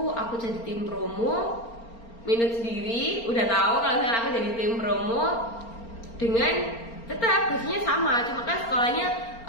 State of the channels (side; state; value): right; late; 4.4 ms